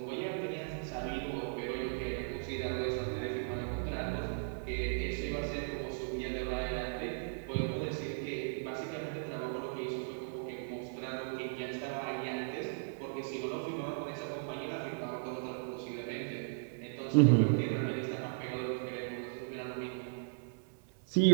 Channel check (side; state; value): left; silent; digital silence